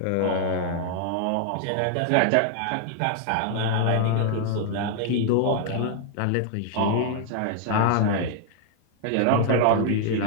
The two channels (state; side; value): different; both; correlation 0.00